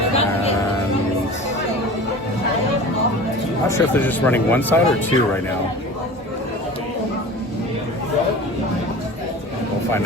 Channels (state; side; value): normal; both; correlation 0.37